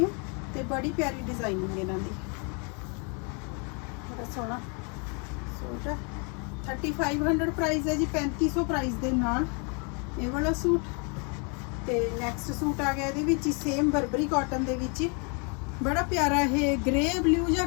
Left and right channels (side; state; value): right; quieter; 35.8 dB